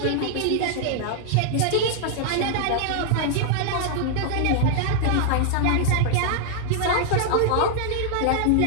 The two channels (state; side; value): different; both; correlation -0.01